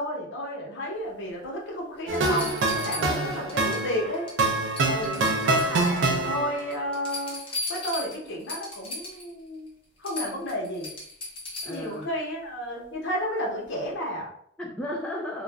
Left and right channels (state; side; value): normal; both; correlation 0.13